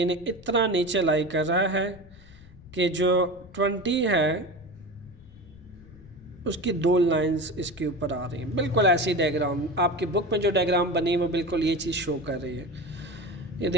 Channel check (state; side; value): noise; left; rumble, 22 dB below the sound